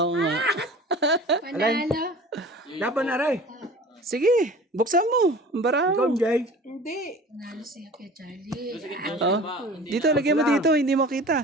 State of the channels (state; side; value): normal; both; correlation 0.41